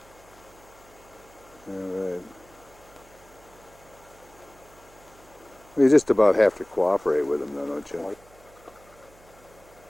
All right. You just about have to cooperate with them, though, don't you?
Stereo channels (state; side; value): noise; right; hum, 26 dB below the sound